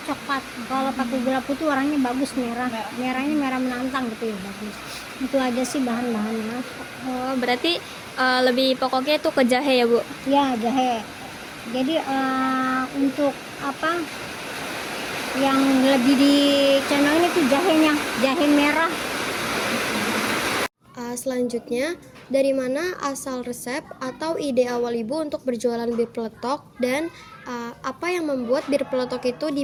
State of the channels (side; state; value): both; identical; correlation 1.00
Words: coklat. Kalau pakai gula putih warnanya bagus, merahnya merah menantang gitu ya, bagus. Itu aja sih bahan-bahannya. Oh, berarti lebih pokoknya itu ke jahe ya Bu? Ya, jahe. Jadi untuk apa yang lebih dicandangin itu jahenya, jahe merah. Selanjutnya, dari mana asal resep atau ide awal Ibu untuk berjualan bir peletok, dan apa yang membuat bir peletok itu